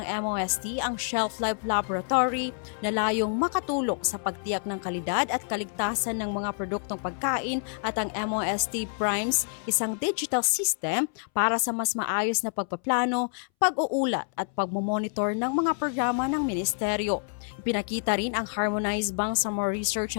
MOST ang Shelf Life Laboratory na layong makatulong sa pagtiyak ng kalidad at kaligtasan ng mga produktong pagkain at ang MOST Primes, isang digital system para sa mas maayos na pagpaplano, pag-uulat at pagmomonitor ng mga programa ng ministeryo. Ipinakita rin ang Harmonized Bangsamoro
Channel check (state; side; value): silent; right; 60 dB below the other